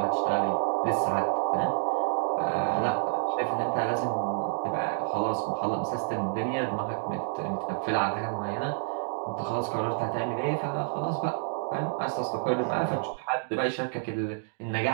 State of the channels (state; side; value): silent; left; digital silence